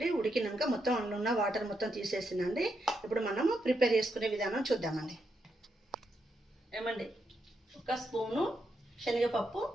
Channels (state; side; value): normal; both; correlation 0.82